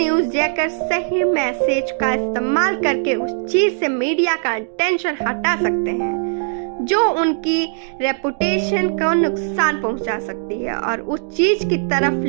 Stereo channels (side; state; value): left; silent; digital silence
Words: जैकर सही मैसेज का इस्तेमाल करके उस चीज से मीडिया का अटेंशन हटा सकते हैं जो उनकी रेपुटेशन को नुकसान पहुंचा सकती है, और उस चीज की तरफ